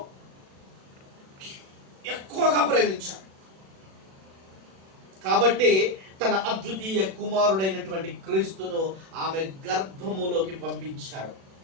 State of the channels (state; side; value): late; left; 37 ms